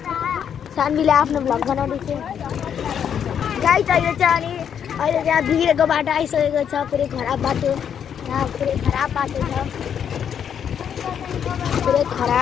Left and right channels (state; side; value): quieter; right; 8.3 dB